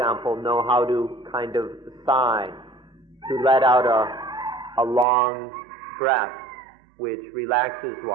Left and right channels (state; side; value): drops out; left; at 5.1 s